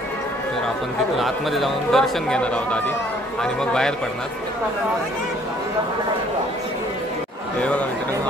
तर आपण तिथून आतमध्ये जाऊन दर्शन घेणार आहोत आधी आणि मग बाहेर पडणार हे बघा मित्रांनो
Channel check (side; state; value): both; normal; correlation 0.60